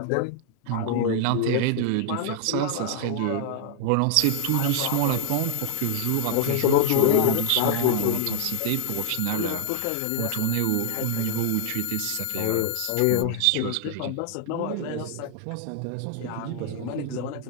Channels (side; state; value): both; different; correlation 0.00